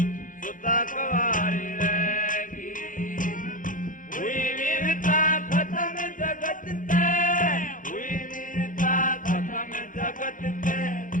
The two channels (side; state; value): right; late; 0.39 ms